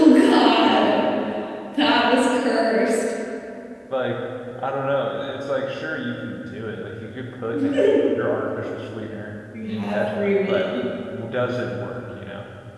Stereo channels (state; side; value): identical; both; correlation 1.00